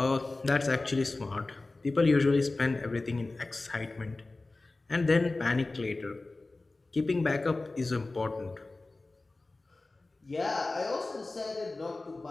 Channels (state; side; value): quieter; right; 3.2 dB